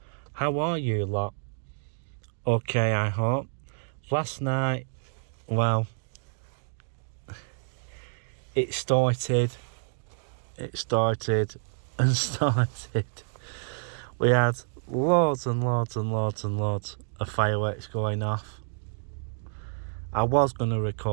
How are you lot? Okay, I hope. Last night, it started and started. We had loads and loads of fireworks going off. I was going to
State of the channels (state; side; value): silent; left; digital silence